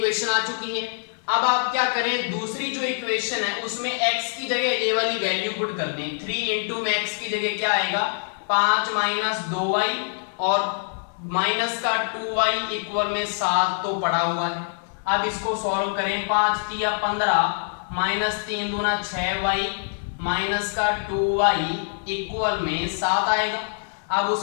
आ चुकी है। अब आप क्या करें, दूसरी जो इक्वेशन है उसमें x की जगह ये वाली वैल्यू पुट कर दें। 3 × में x की जगह क्या आएगा, 5 - 2y और माइनस का 2y = 7 तो पड़ा हुआ है। अब इसको सॉल्व करें, 5 × 3 = 15 माइनस 3 दूना 6y माइनस का 2y = 7 आएगा। अब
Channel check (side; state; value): right; silent; 59 dB below the other